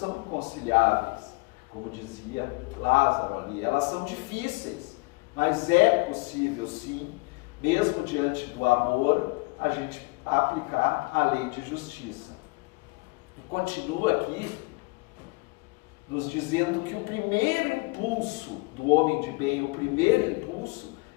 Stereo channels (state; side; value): quieter; right; 26.2 dB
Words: inconciliáveis, como dizia Lázaro ali. Elas são difíceis, mas é possível sim, mesmo diante do amor, a gente aplicar a lei de justiça. E continua aqui nos dizendo que o primeiro impulso do homem de bem, o primeiro impulso